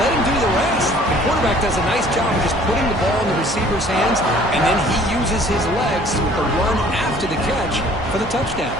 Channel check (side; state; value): right; noise; hum, 13 dB below the sound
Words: let him do the rest. The quarterback does a nice job of just putting the ball in the receiver's hands, and then he uses his legs with the run after the catch for the touchdown.